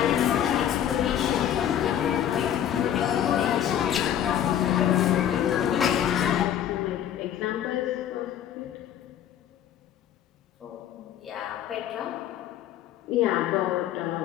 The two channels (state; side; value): quieter; right; 10.3 dB